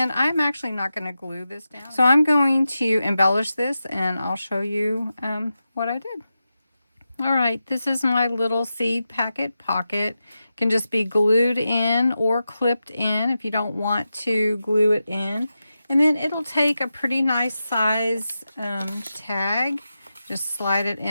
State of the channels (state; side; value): inverted; both; correlation -0.91